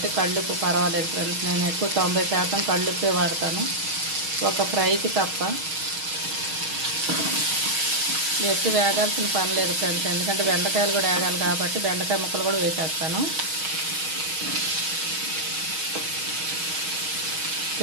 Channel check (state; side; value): late; left; 6.3 ms